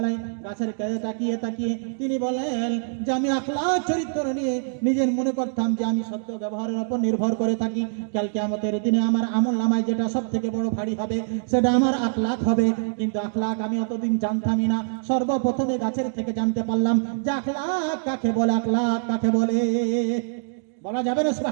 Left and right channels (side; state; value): left; silent; digital silence